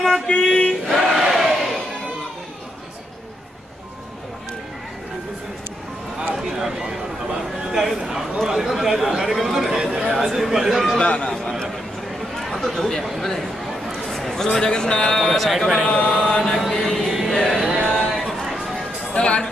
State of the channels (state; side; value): normal; both; correlation 0.80